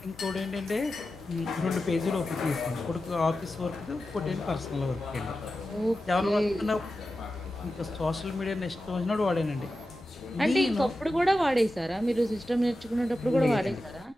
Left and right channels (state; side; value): normal; both; correlation 0.92